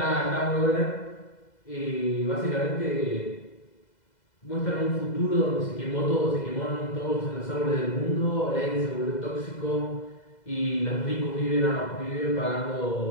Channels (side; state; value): right; late; 2.0 ms